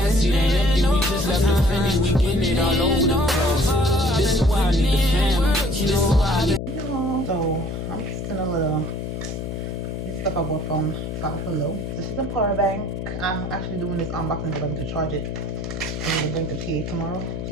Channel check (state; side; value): noise; left; hum, 5 dB below the sound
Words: ain't empty, we just left the Fendi, we getting it all over the place. This is why I need the fam, this is why I need. So I'm just in a little this stuff I bought from Five Below. This is a power bank. I'm actually doing this unboxing because I'm going to charge it. I'm going to bring the PA tomorrow.